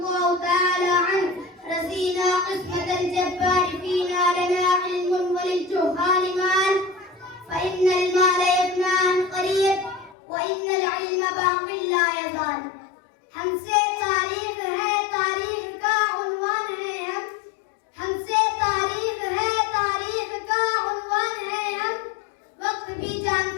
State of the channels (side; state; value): right; drops out; at 10.2 s